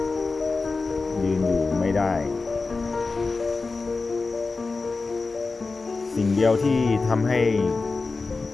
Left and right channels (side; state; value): right; quieter; 4.0 dB